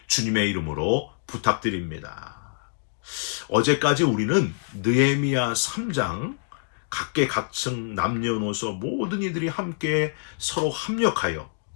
주님의 이름으로 부탁드립니다. 어제까지 우리는 느헤미야 3장 각계각층 남녀노소 모든 이들이 함께 서로 합력하여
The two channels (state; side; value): silent; right; digital silence